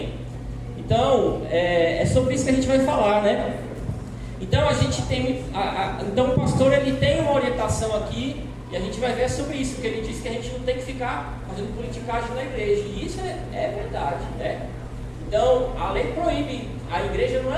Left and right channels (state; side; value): identical; both; correlation 1.00